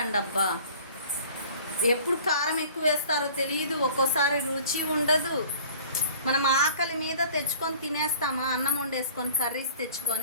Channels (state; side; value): inverted; both; correlation -0.48